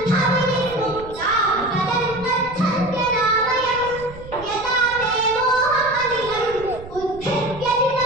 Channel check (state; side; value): noise; right; rumble, 16 dB below the sound